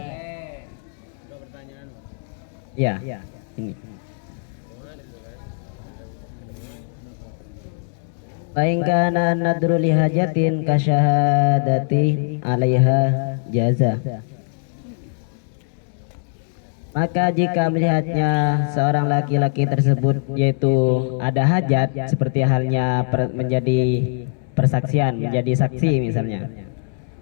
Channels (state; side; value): silent; right; digital silence